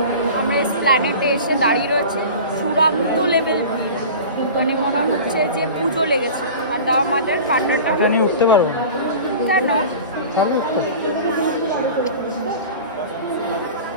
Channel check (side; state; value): both; inverted; correlation -0.37